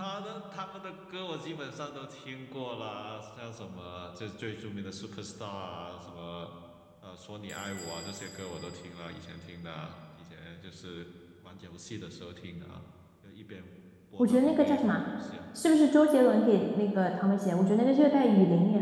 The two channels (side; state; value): both; identical; correlation 1.00